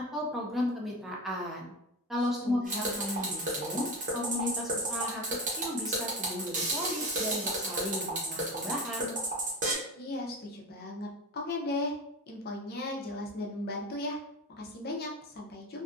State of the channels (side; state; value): both; normal; correlation 0.26